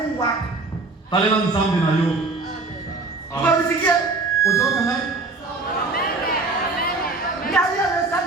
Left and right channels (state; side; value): quieter; left; 3.6 dB